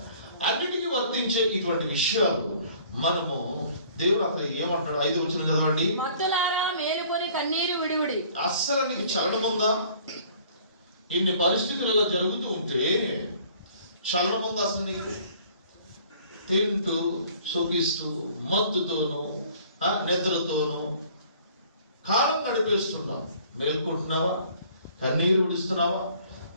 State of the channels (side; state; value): both; inverted; correlation -0.55